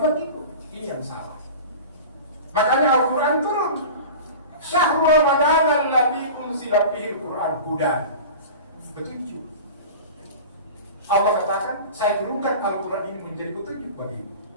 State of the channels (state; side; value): inverted; both; correlation -0.35